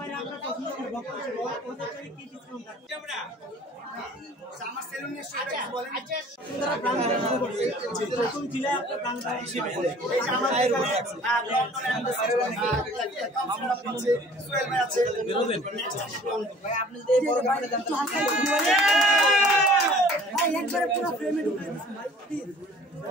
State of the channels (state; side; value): normal; both; correlation 0.50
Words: আমরা পছন্দ করি বক্তব্য ওদের কি ডিসকাউন্ট আছে আমরা আমার সেলুন নিয়ে সেটা বলেন সুন্দর ব্র্যান্ড শুরু করছে নতুন জেলায় আপনার ব্র্যান্ড হিসেবে এই যে আমাদের আমরা পাচ্ছি সোহেল ভাই আছে বেরোবেন ভাই আপনি যদি বড় ব্র্যান্ডে দেন তো হালকা ভাই একবারে পুরো ফ্রেমে ঢুকাই দিন ভাই প্লিজ